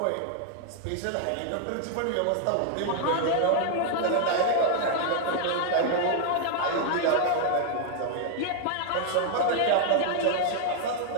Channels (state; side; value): different; both; correlation 0.00